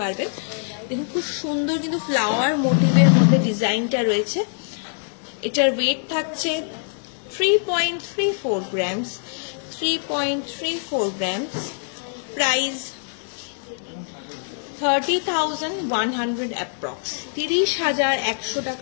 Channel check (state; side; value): silent; right; digital silence